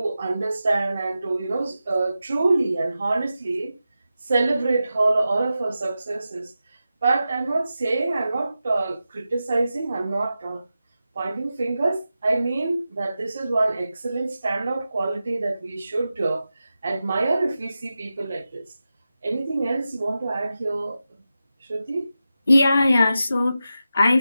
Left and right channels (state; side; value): inverted; both; correlation -0.91